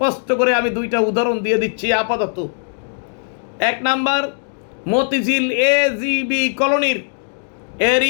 করে আমি 2টা উদাহরণ দিয়ে দিচ্ছি আপাতত। 1 নাম্বার, মতিঝিল AGB কলোনির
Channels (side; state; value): right; silent; digital silence